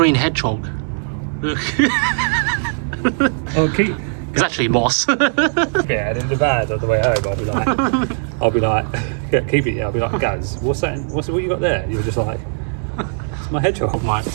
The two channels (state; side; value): silent; left; 65 dB below the other